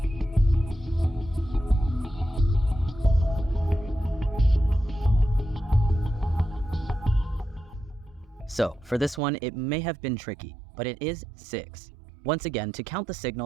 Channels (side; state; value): left; drops out; at 9.2 s